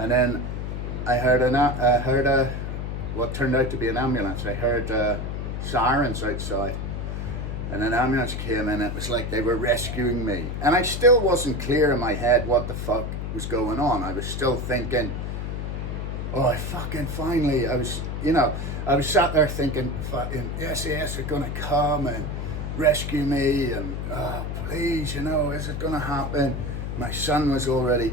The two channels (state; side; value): noise; left; hum, 4 dB below the sound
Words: then I heard what turned out to be an ambulance. I heard sirens outside. And an ambulance came in, it was like they were rescuing me. And I still wasn't clear in my head what the fuck was going on. I was still thinking, oh, I was sat there thinking, fucking, SAS are gonna come and rescue me, and please, is it gonna happen? My son was already